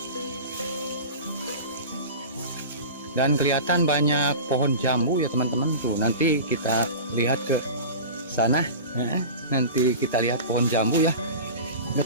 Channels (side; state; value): both; inverted; correlation -0.33